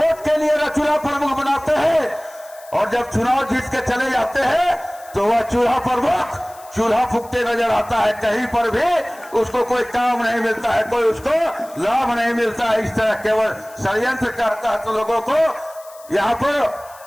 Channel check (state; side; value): noise; left; hiss, 23 dB below the sound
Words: के लिए चूल्हा प्रमुख बनाते हैं। और जब चुनाव जीत के चले जाते हैं तो वह चूल्हा प्रमुख चूल्हा फूकते नजर आता है। कहीं पर भी उसको कोई काम नहीं मिलता है, कोई उसको लाभ नहीं मिलता है। इस तरह केवल षड्यंत्र करता है तो लोगों को यहाँ पर